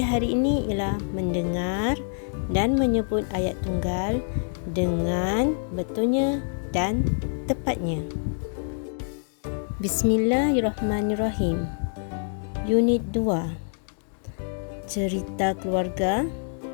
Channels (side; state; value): right; silent; digital silence